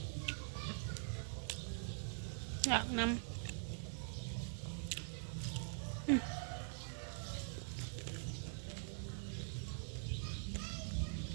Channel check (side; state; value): left; silent; digital silence